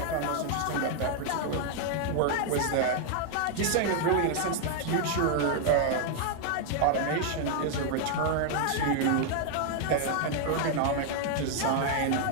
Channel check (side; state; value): both; different; correlation 0.00